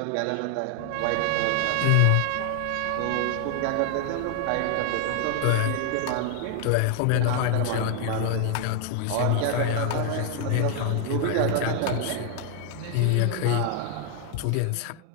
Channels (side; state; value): both; different; correlation 0.00